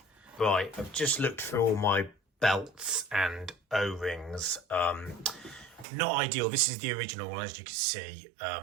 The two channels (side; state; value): left; drops out; at 5.9 s